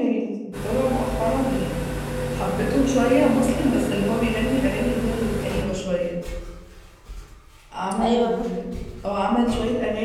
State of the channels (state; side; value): identical; both; correlation 1.00